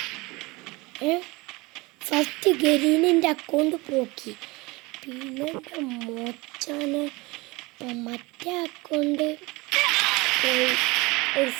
ഫസ്റ്റ് ഗരീനിൻ്റെ അക്കൗണ്ട് പോക്കി. പിന്നെ മോച്ചാന് മറ്റേ അക്കൗണ്ട് ഒരു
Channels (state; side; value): quieter; left; 23.7 dB